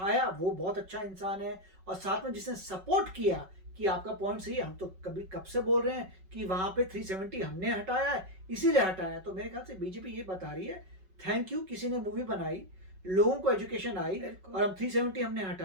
वो बहुत अच्छा इंसान है, और साथ में जिसने सपोर्ट किया कि आपका पॉइंट सही है, हम तो कब से बोल रहे हैं कि वहां पे 370 हमने हटाया है, इसीलिए हटाया। तो मेरे ख्याल से बीजेपी ये बता रही है थैंक यू, किसी ने मूवी बनाई, लोगों को एजुकेशन आई, और हम 370 हमने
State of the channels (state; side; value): late; left; 5.3 ms